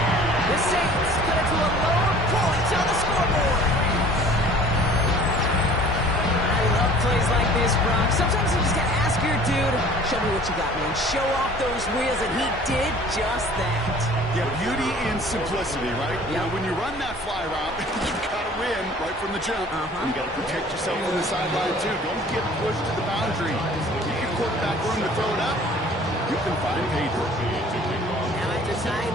The Saints cut it to a lower point on the scoreboard. I love plays like this, Brock. Sometimes you just gotta ask your dude, show me what you got, man. Show off those wheels, and he did just that. Yeah, beauty and simplicity, right? Yep. You know, when you run that fly route, you've got to win right from the jump. You got to protect yourself from the sideline, too. Don't get pushed to the boundary. You get quarterback room to throw it up, you can find pay dirt. Now after tying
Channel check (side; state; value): both; normal; correlation 0.49